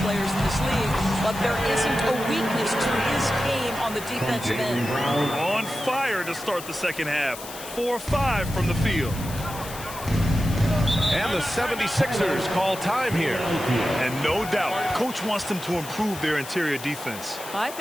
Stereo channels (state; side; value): noise; left; hiss, 13 dB below the sound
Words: in this league, but there isn't a weakness to his game on the defensive end. On fire to start the second half. 4-5 from the field. And the 76ers call time here. And no doubt, coach wants them to improve their interior defense. I